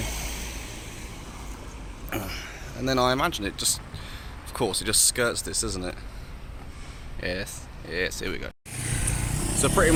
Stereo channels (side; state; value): both; identical; correlation 1.00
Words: and then I imagine it just, of course, it just skirts this, doesn't it? Yes, here we go. So pretty